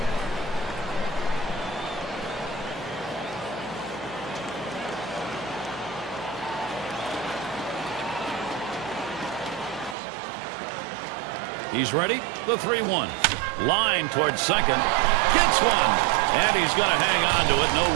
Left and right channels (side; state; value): left; drops out; at 10.0 s